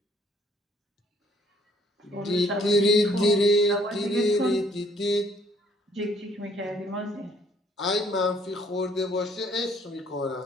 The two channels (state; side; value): normal; both; correlation 0.63